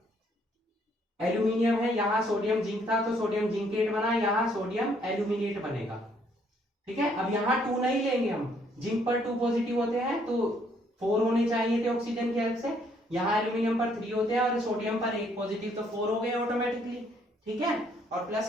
एल्यूमिनियम है, यहाँ सोडियम जिंक था तो सोडियम जिंकेट बना, यहाँ सोडियम एल्यूमिनेट बनेगा। ठीक है, अब यहाँ 2 नहीं लेंगे हम, जिंक पर 2 पॉजिटिव होते हैं तो 4 होने चाहिए थे ऑक्सीजन की हेल्प से, यहाँ एल्यूमिनियम पर 3 होते हैं और सोडियम पर 1 पॉजिटिव, तो 4 हो गए ऑटोमेटिकली। ठीक है, और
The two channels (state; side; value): normal; both; correlation 0.67